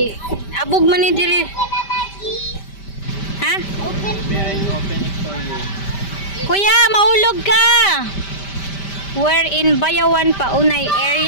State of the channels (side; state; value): right; late; 5.1 ms